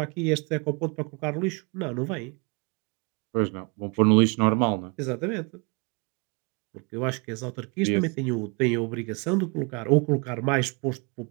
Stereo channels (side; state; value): left; quieter; 32.6 dB